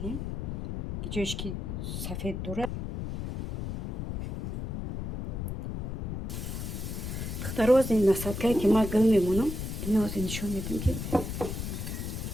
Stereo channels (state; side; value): noise; left; rumble, 5 dB below the sound